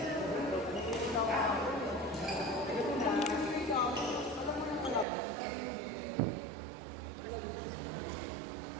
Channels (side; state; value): left; drops out; at 5.1 s